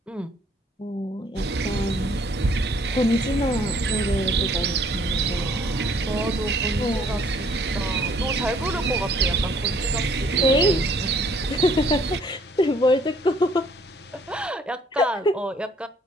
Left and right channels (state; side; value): normal; both; correlation 0.62